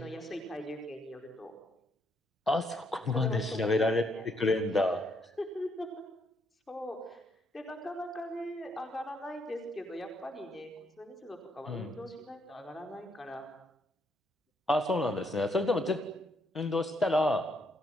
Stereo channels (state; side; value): normal; both; correlation 0.74